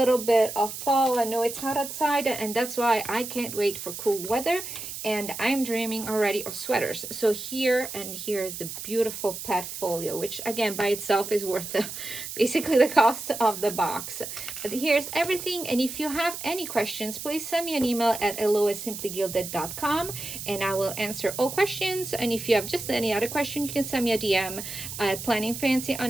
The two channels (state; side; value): noise; right; hiss, 8 dB below the sound